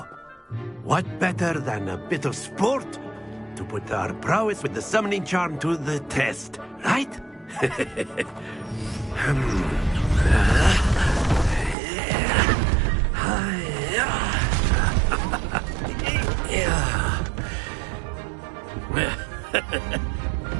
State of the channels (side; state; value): left; drops out; at 11.8 s